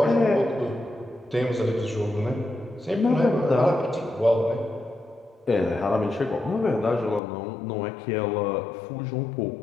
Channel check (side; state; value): right; drops out; at 7.2 s